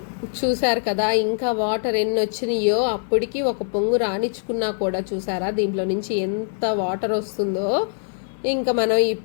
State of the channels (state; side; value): silent; right; 63 dB below the other